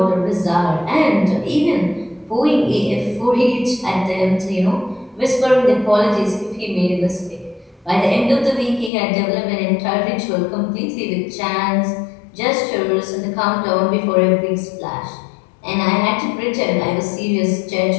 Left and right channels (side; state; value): right; drops out; at 8.9 s